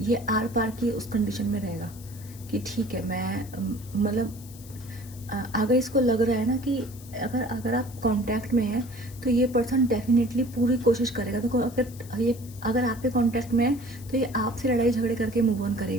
आर पार की उस कंडीशन में रहेगा कि ठीक है, मैं मतलब अगर इसको लग रहा है ना कि अगर आप कांटेक्ट में हैं तो ये पर्सन डेफिनेटली पूरी कोशिश करेगा। देखो अगर आपके कांटेक्ट में है तो ये आपसे लड़ाई झगड़े करके मूव ऑन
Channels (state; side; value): noise; left; hiss, 20 dB below the sound